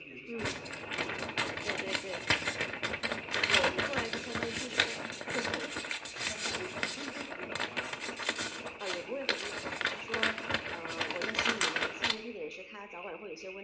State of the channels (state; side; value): identical; both; correlation 1.00